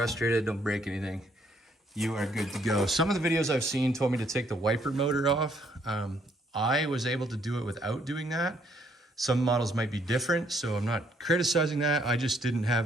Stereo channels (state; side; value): normal; both; correlation 0.68